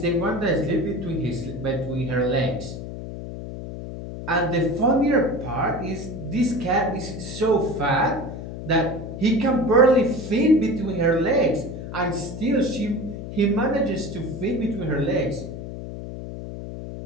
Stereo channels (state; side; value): noise; left; hum, 9 dB below the sound